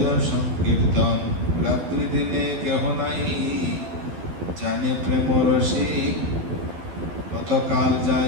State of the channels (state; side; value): late; left; 12 ms